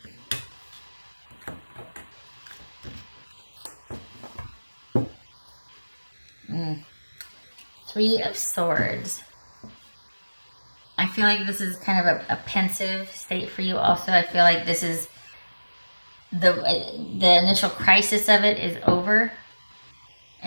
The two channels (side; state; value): both; inverted; correlation -1.00